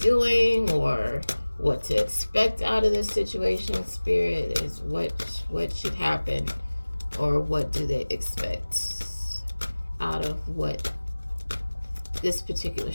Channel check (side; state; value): both; inverted; correlation -1.00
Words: doing, or what to expect out of this situation. Spirit is what should happen, or what do they expect out of what this particular